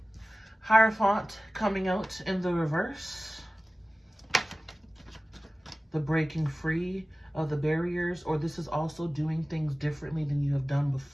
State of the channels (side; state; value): both; normal; correlation 0.97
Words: Hierophant coming out in the reverse. The breaking free of the barriers, or this is also doing things differently than you have done